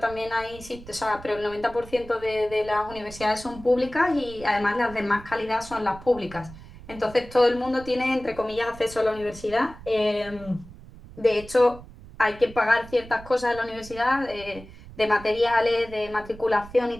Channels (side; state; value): right; noise; rumble, 17 dB below the sound